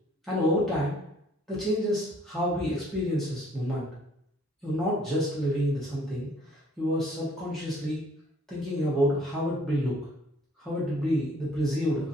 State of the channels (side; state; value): both; normal; correlation 0.60